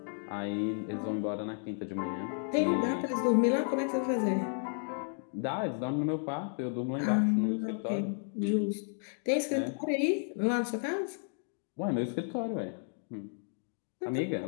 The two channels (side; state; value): right; silent; 56 dB below the other